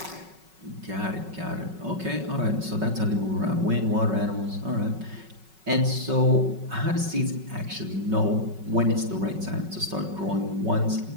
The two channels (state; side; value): late; left; 5.4 ms